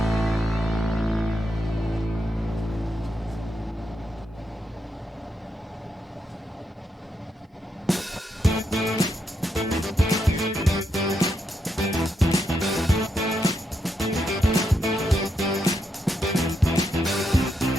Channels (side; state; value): both; normal; correlation 0.81